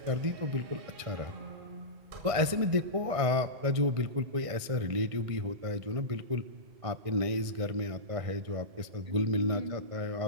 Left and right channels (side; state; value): left; late; 1.6 ms